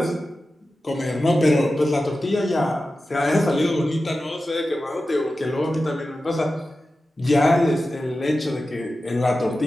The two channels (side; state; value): both; normal; correlation 0.93